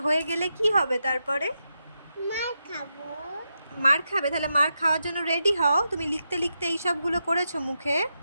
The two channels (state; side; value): inverted; both; correlation -0.86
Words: হয়ে গেলে কি হবে তারপরে? মার খাবো। মার খাবে? তাহলে মার খাওয়ার জন্য রেডি হও। তুমি লিখতে লিখতে এই সবগুলো করেছো মুখে।